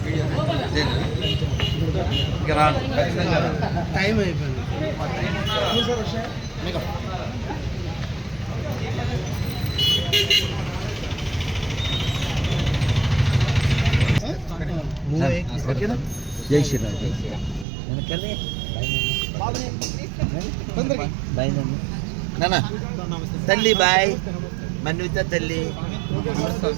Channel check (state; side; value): drops out; left; at 17.7 s